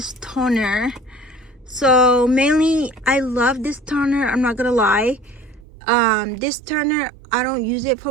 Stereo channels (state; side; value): drops out; left; at 5.7 s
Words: toner. So mainly I love this toner, I'm not gonna lie. This toner, I don't use it